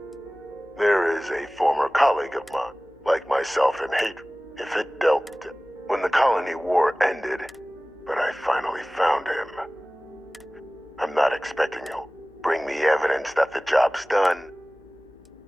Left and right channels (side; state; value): left; noise; hum, 29 dB below the sound